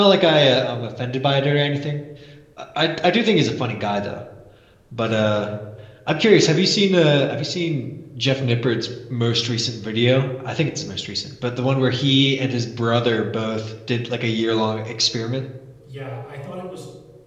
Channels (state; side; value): identical; both; correlation 1.00